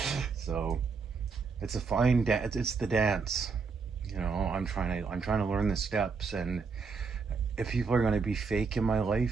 So it's a fine dance. It's the dance. I'm trying to learn the steps, and if people are going to be fake in my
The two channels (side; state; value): left; quieter; 5.0 dB